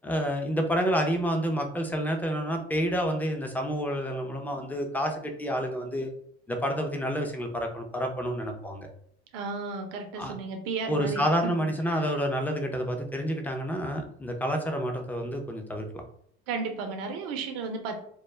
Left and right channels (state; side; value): normal; both; correlation 0.61